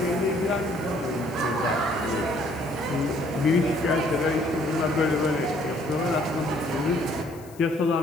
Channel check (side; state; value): left; noise; hiss, 24 dB below the sound